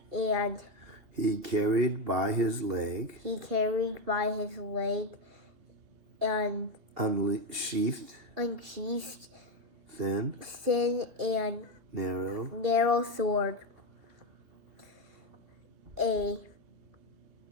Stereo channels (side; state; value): left; late; 2.8 ms